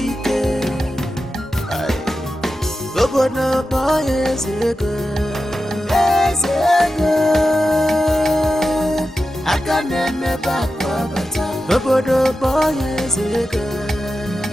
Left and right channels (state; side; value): normal; both; correlation 0.91